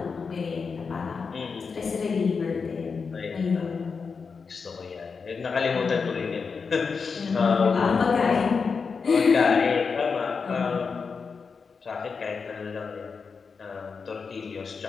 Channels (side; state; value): right; quieter; 5.2 dB